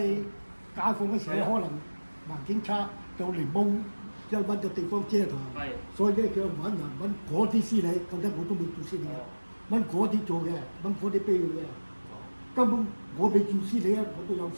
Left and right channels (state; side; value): inverted; both; correlation -1.00